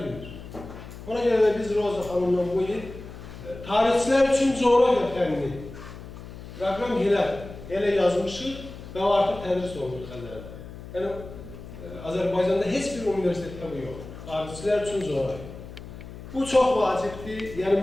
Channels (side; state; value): left; noise; hum, 14 dB below the sound